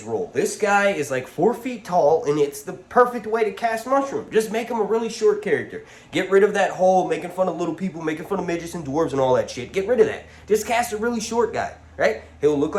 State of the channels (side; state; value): both; identical; correlation 1.00